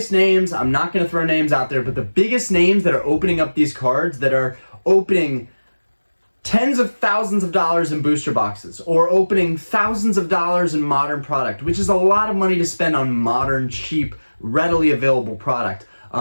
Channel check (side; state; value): both; inverted; correlation -1.00